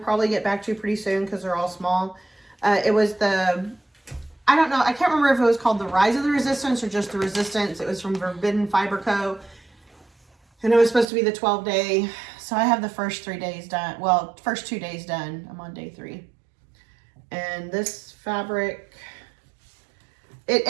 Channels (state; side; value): drops out; left; at 11.1 s